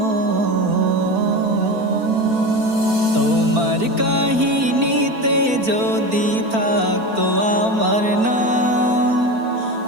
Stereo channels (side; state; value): left; late; 4.4 ms